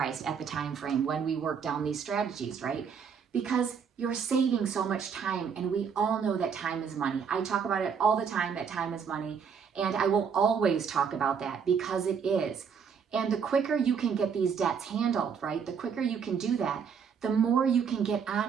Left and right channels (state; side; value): quieter; left; 6.7 dB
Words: at the time frame when we work down these strategies, right? Because you're saving so much time, and we all know that time is money. I talk about it all the time, that time is money, and I will always talk about that because it is. And the quicker you can get these debts handled, right? The quicker you can do that, the more you can get